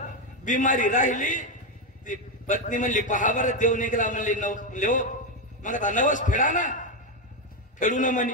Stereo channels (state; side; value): normal; both; correlation 0.07